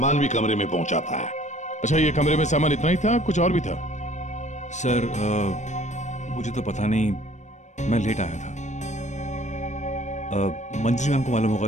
भी कमरे में पहुंचाता है। अच्छा, ये कमरे में सामान इतना ही था, कुछ और भी था? सर, मुझे तो पता नहीं, मैं लेट आया था। मंजरी मैम को मालूम होगा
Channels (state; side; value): late; right; 0.34 ms